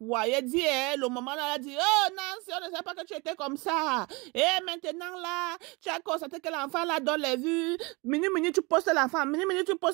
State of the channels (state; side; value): quieter; left; 27.1 dB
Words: elle dit, le moment où elle a dit, oh, Nancy, on ne sait pas que tu étais comme ça, et maintenant là, tu as constaté que l'enfant là donne les vues, minute, tu postes l'enfant, minute, tu